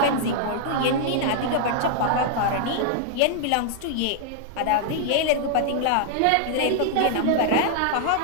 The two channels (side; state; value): both; different; correlation -0.01